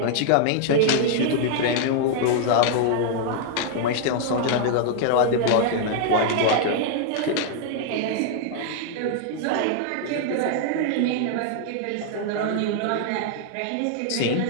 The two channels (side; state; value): both; different; correlation 0.00